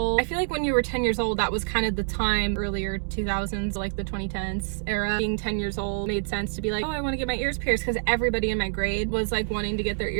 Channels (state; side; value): silent; left; digital silence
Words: I feel like when you were 10 years old, that was kind of the time, earlier 2000s, like the 2010s era. Being 10 years old made sense to be like, oh, I want to get my ears pierced, because everybody in my grade was like wanting to get their